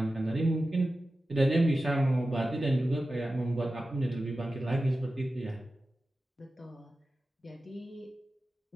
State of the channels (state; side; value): normal; both; correlation 0.94